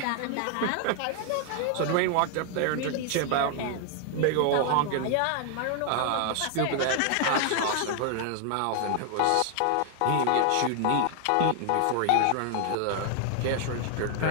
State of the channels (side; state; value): both; different; correlation 0.00